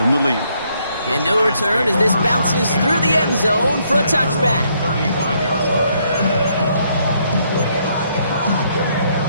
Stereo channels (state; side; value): inverted; both; correlation -0.72